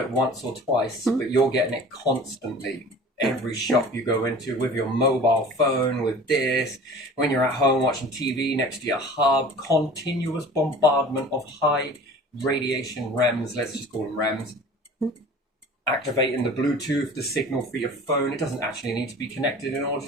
it once or twice, but you're getting it constantly. Every shop you go into with your mobile phone, with this, when you're at home watching TV next to your hub, continuous bombardment of high radiation REMs, let's just call them REMs, activating the Bluetooth, the signal for your phone. It doesn't actually need to be connected in order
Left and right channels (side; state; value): both; normal; correlation 0.43